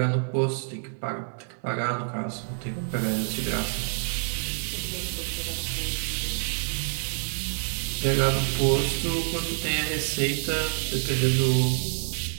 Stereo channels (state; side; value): silent; left; digital silence